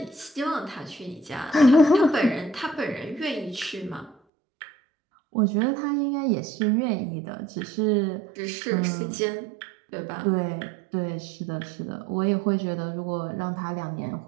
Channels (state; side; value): drops out; left; at 4.2 s